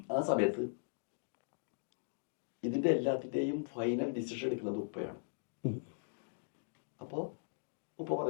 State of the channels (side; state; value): right; silent; digital silence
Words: ആ സമയത്ത് ഇതിൻ്റെ എല്ലാത്തിൻ്റെയും ഫൈനൽ ഡിസിഷൻ എടുക്കുന്നത് ഉപ്പയാണ്. അപ്പോൾ ഉപ്പ